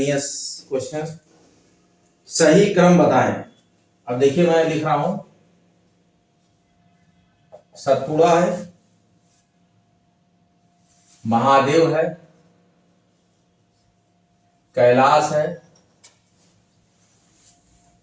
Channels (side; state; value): both; identical; correlation 1.00